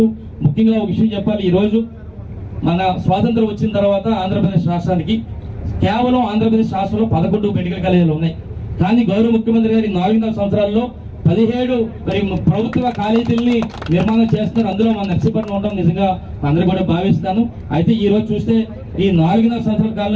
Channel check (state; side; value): identical; both; correlation 1.00